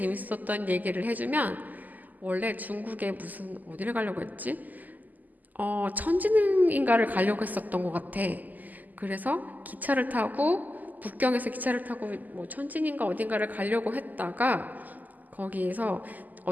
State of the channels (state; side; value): late; left; 0.082 ms